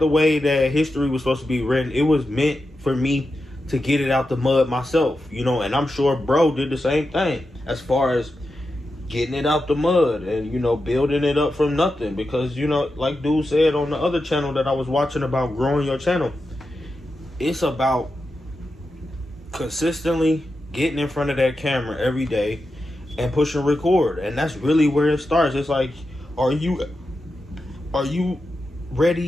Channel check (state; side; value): normal; both; correlation 0.89